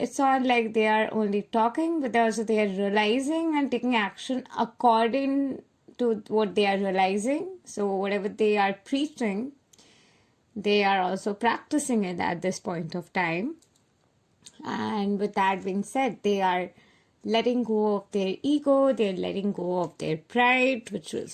not like they are only talking, but also they are realizing and taking action according to what they are realizing. So whatever they are preaching, they are also practicing it at this point of time. And with that being said, they are letting go of their ego, they're letting go of their pride, which was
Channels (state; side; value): identical; both; correlation 1.00